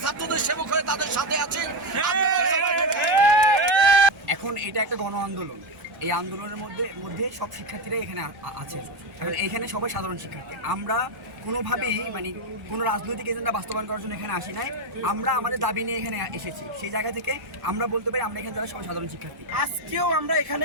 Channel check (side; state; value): both; normal; correlation 0.11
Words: ছাত্রদের সেবক হয়ে তাদের সাথে আছি। এখন এটা একটা গণ আন্দোলন। এই আন্দোলনের মধ্যে সব শিক্ষার্থীরা এখানে আছে। এখন এখানে সবাই সাধারণ শিক্ষার্থী। আমরা কোনোভাবেই কোনো রাজনৈতিক এজেন্ডা বাস্তবায়ন করার জন্য এখানে আসি নাই। আমরা আমাদের দাবি নিয়ে এখানে এসেছি। সেই জায়গা থেকে আমরা বলতে পারি আমরা এখানে যারা সবাই সাধারণ শিক্ষার্থী। আজকেও আমরা